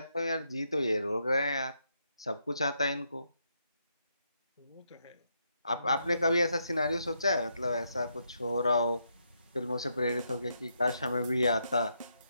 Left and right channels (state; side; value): inverted; both; correlation -0.79